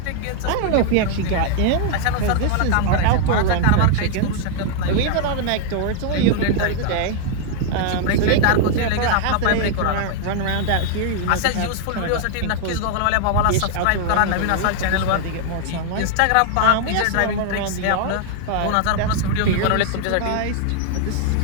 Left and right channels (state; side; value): different; both; correlation 0.00